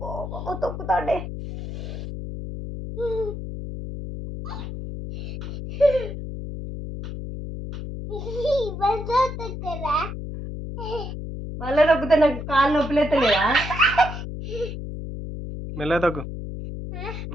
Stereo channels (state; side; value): noise; left; hum, 7 dB below the sound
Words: తొక్కుతాడే. మళ్ళీ నొక్కితే నాకు కాళ్ళు నొప్పులు ఎత్తలేదా? మెల్లగా తగ్గు,